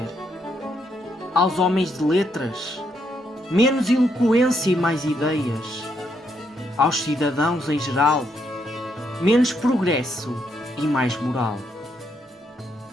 Aos homens de letras, menos eloquência e mais ideias. Aos cidadãos em geral, menos progresso e mais moral.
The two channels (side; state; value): both; normal; correlation 0.76